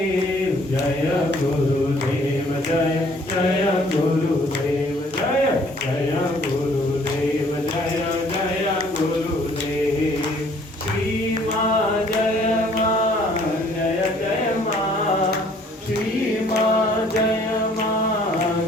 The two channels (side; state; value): both; normal; correlation 0.59